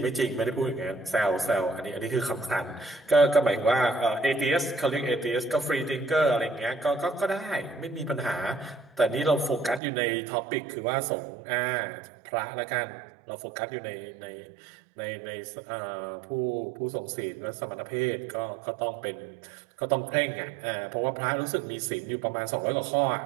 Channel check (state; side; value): drops out; left; at 9.8 s